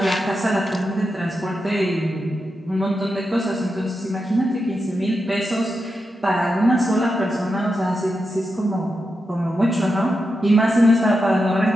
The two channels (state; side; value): normal; both; correlation 0.88